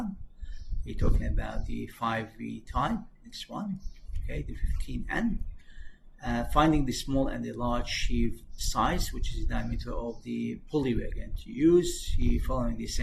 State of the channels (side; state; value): both; identical; correlation 1.00